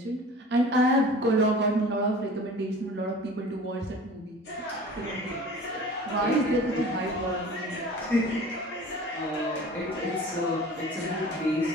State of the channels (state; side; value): normal; both; correlation 0.42